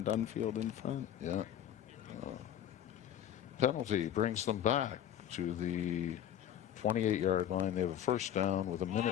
Dunfield in front. Yeah. Penalty brings them back to the 28-yard line. They have a first down with 1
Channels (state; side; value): quieter; right; 10.5 dB